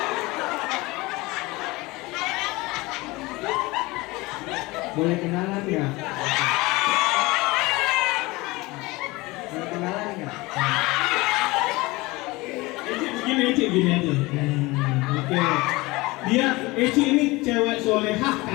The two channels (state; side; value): quieter; right; 22.1 dB